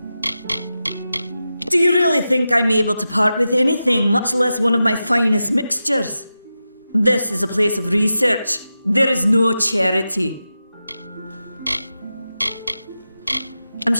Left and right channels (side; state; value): both; inverted; correlation -0.91